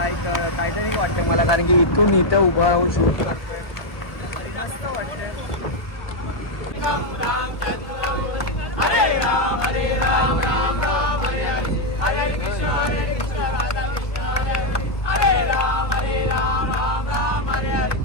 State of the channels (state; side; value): late; right; 1.4 ms